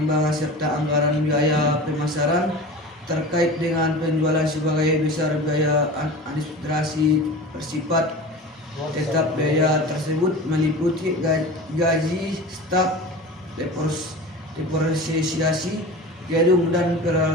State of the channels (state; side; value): normal; both; correlation 0.34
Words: serta anggaran biaya pemasaran terkait dengan penjualan. Sebagai besar biaya administrasi bersifat tetap. Biaya tersebut meliputi gaji staf, depresiasi gedung dan